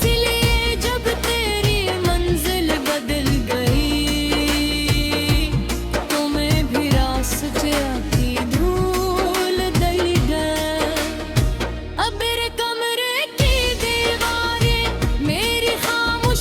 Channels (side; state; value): both; identical; correlation 1.00